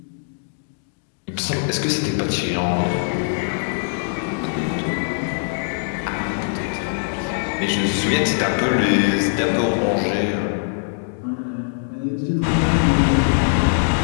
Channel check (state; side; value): silent; right; digital silence